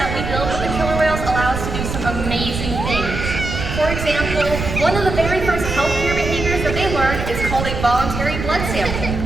we build with the killer whales allow us to do some amazing things. For example, one of the very first healthcare behaviors that they learn is called a voluntary blood sample.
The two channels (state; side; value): noise; right; rumble, 5 dB below the sound